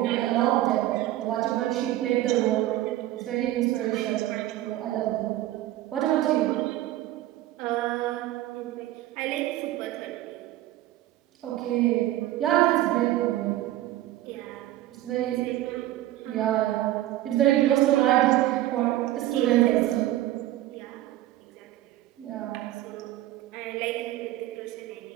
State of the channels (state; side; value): quieter; left; 14.7 dB